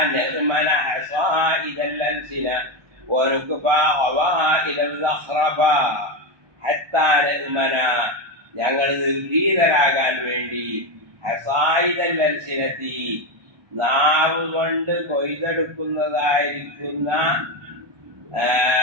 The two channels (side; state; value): left; late; 1.2 ms